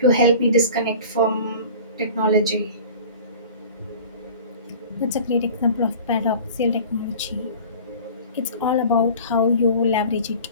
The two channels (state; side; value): inverted; both; correlation -0.42